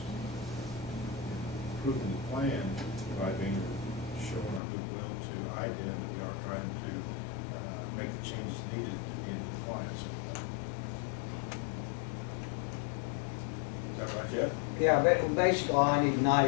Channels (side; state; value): right; drops out; at 4.6 s